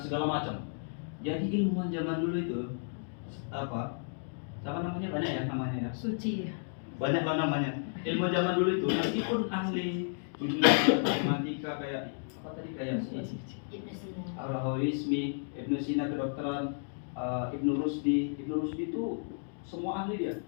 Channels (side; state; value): right; silent; digital silence